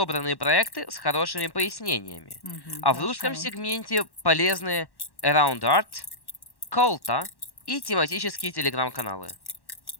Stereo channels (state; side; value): late; right; 1.1 ms